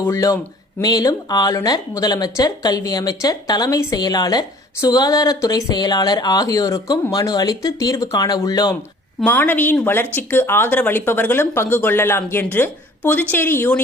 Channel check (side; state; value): both; normal; correlation 0.51